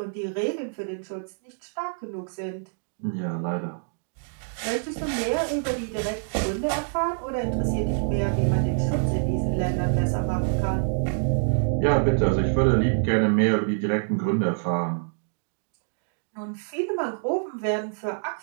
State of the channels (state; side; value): silent; left; digital silence